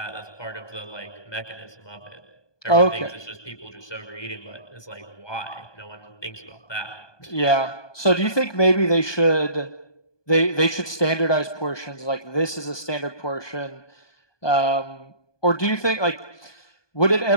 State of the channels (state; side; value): late; right; 1.2 ms